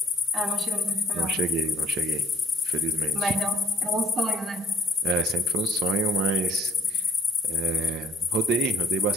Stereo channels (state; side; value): normal; both; correlation 0.56